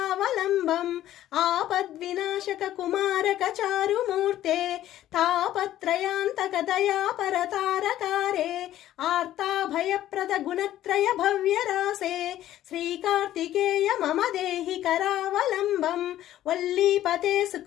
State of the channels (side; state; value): right; quieter; 13.1 dB